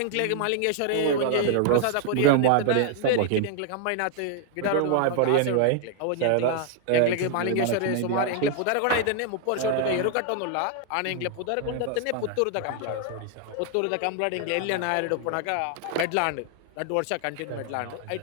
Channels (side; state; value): both; different; correlation 0.00